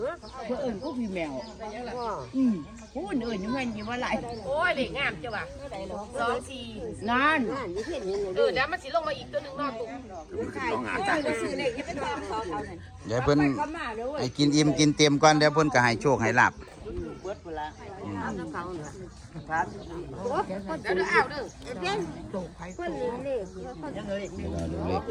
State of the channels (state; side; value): identical; both; correlation 1.00